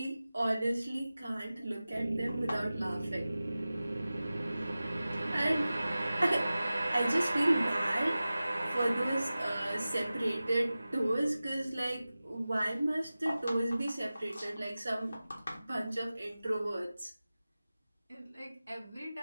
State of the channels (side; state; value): both; inverted; correlation -0.96